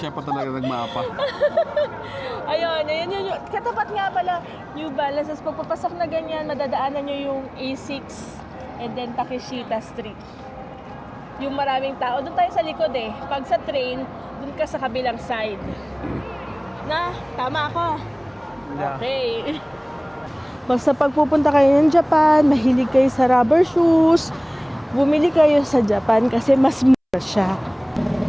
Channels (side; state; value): both; identical; correlation 1.00